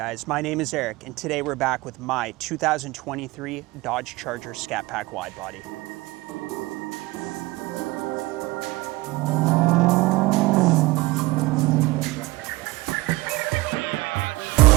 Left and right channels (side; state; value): left; quieter; 20.9 dB